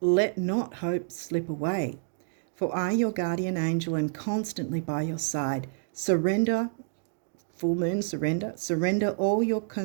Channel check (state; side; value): silent; left; digital silence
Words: not hope slip away, for I, your guardian angel, am constantly by your side. Surrender, full moon, surrender all your